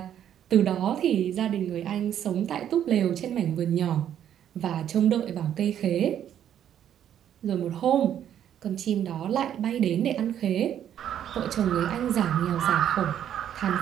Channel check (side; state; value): left; quieter; 10.1 dB